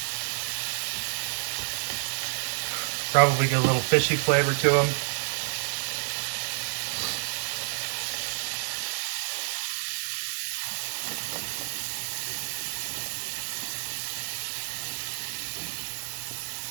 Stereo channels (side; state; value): left; silent; 58 dB below the other